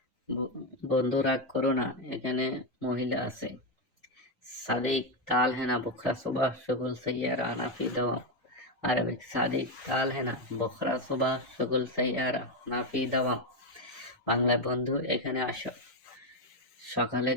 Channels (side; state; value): both; normal; correlation 0.07